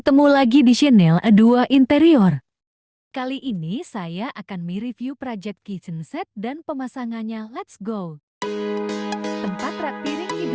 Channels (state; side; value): identical; both; correlation 1.00